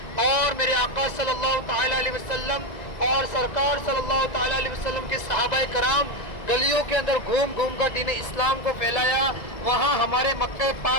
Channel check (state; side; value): late; right; 1.9 ms